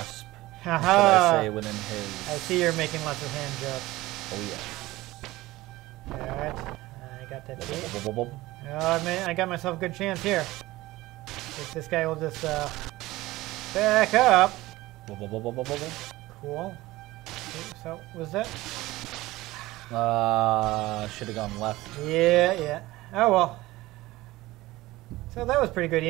Haha! I say within his. I see you're making lots of hand jokes. Oh, yes. Alright, I got that key. Oh, I got myself a good chance here. If this guy will just back up. Cool. Okay, so, was that? Should have gone left. Yeah. Oh well. So that was pretty good,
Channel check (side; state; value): left; quieter; 18.5 dB